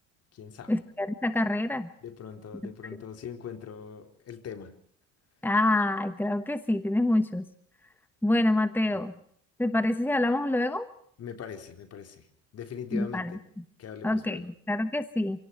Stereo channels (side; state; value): both; normal; correlation 0.88